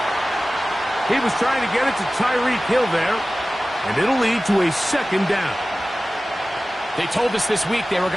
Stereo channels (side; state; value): both; normal; correlation 0.97